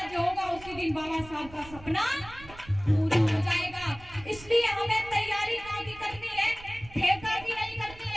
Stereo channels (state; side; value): noise; right; rumble, 18 dB below the sound